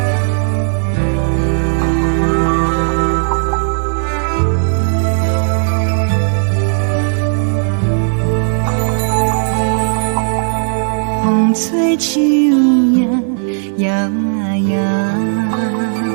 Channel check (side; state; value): left; silent; digital silence